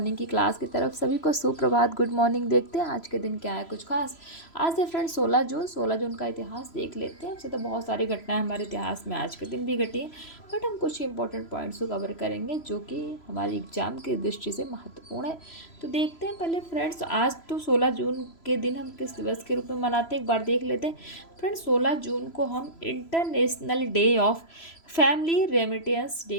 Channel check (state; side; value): late; right; 3.0 ms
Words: की क्लास की तरफ। सभी को सुप्रभात, गुड मॉर्निंग। देखते हैं आज के दिन क्या है कुछ खास। आज है फ्रेंड 16 जून का इतिहास देख लेते हैं। वैसे तो बहुत सारी घटनाएं हमारे इतिहास में आज के दिन भी घटी हैं, बट हम कुछ इंपॉर्टेंट पॉइंट्स को कवर करेंगे जो कि हमारी एग्जाम की दृष्टि से महत्वपूर्ण है। तो देखते हैं पहले फ्रेंड्स, आज तो 16 जून के दिन हम किस दिवस के रूप में मनाते हैं एक बार देख लेते हैं। फ्रेंड्स, 16 जून को हम international day of family remittance day